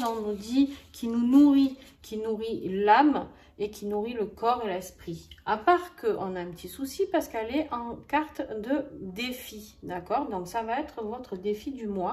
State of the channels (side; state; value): both; identical; correlation 1.00